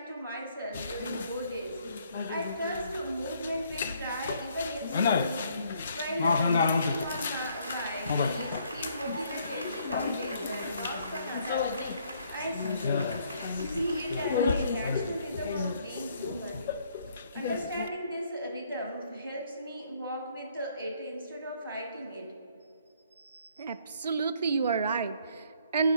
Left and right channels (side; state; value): both; inverted; correlation -0.66